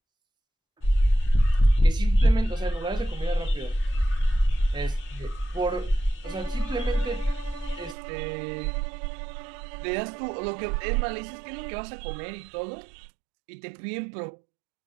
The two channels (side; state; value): left; drops out; at 8.0 s